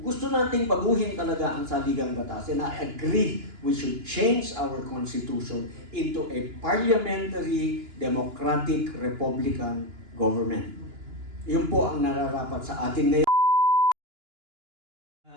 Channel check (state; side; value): late; left; 2.9 ms